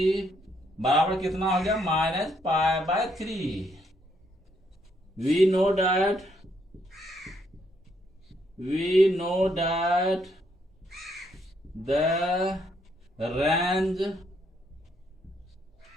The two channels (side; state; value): both; normal; correlation 0.73